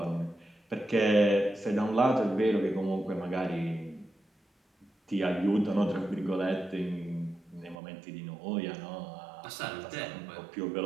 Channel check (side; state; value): left; drops out; at 7.8 s